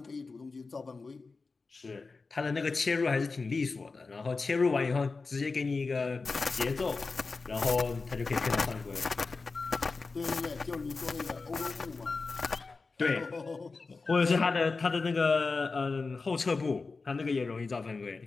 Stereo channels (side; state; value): right; quieter; 4.1 dB